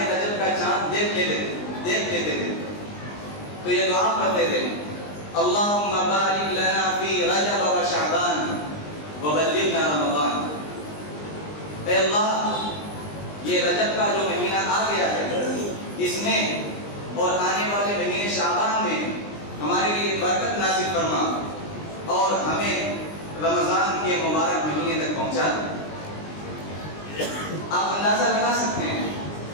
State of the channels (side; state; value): right; late; 20 ms